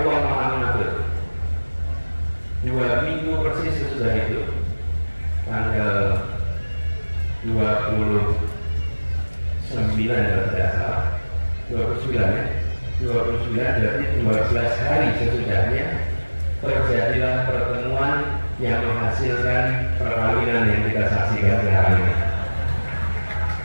Maha mengatur. 2 minggu persis sesudah itu, tanggal 29 kalau tidak salah, 29 ya. 29 berarti 12 hari sesudahnya terjadilah pertemuan yang menghasilkan perkawinan yang kita saksikan sekarang ini.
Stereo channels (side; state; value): both; inverted; correlation -1.00